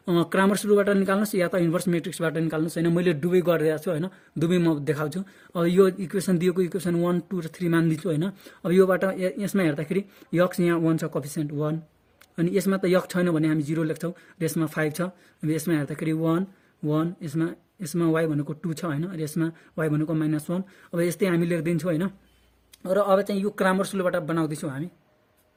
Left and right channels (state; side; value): identical; both; correlation 1.00